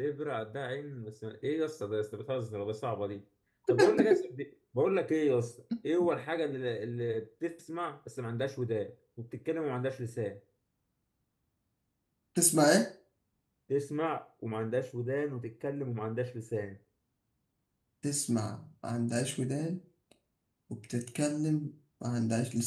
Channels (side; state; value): both; identical; correlation 1.00